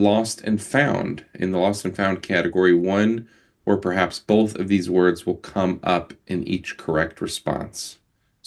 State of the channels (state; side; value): identical; both; correlation 1.00